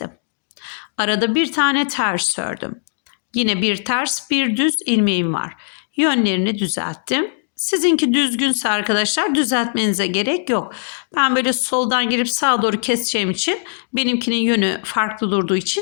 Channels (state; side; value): silent; right; digital silence